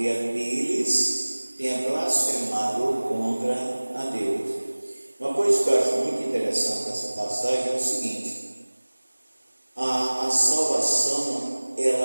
deles, tenha blasfemado contra a Deus. Uma coisa que eu acho muito interessante nessa passagem é o seguinte: a salvação,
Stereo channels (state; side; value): inverted; both; correlation -1.00